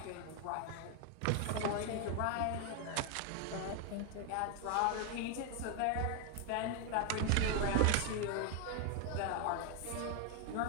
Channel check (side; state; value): both; different; correlation 0.01